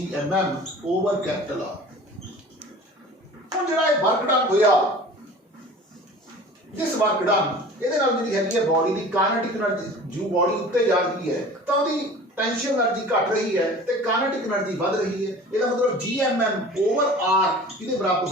over capital r ਹੁਣ ਜਿਹੜਾ ਇਹ ਵਰਕ ਡਨ ਹੋਇਆ ਜਿਸ ਵਰਕ ਡਨ ਇਹਦੇ ਨਾਲ ਜਿਹੜੀ ਹੈਗੀ ਹੈ ਬਾਡੀ ਦੀ ਕਾਇਨੈਟਿਕ એનર્ਜੀ ਜੋ ਬਾਡੀ ਉੱਤੇ ਜਾ ਰਹੀ ਹੈ ਤਾਂ ਉਹਦੀ टेंशन एनर्जी घट रही है तो काइनेटिक एनर्जी बढ़ रही है इसका मतलब gmm ओवर r किसके बराबर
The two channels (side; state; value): both; normal; correlation 0.42